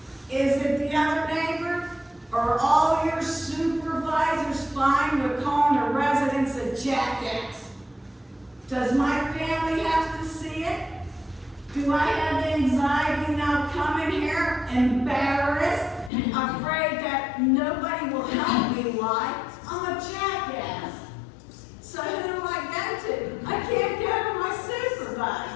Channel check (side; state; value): right; drops out; at 16.1 s